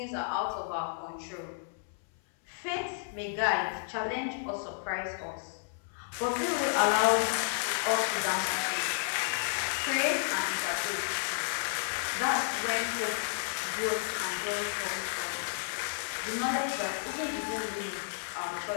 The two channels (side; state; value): right; silent; 56 dB below the other